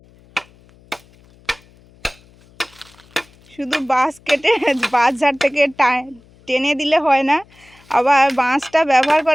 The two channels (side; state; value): left; noise; hum, 28 dB below the sound